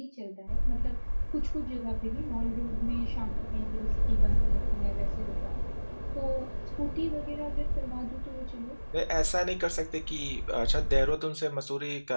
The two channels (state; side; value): inverted; both; correlation -1.00